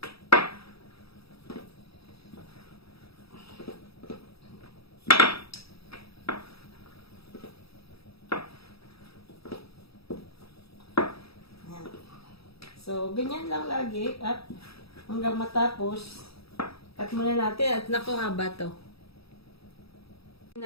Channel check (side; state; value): right; late; 0.77 ms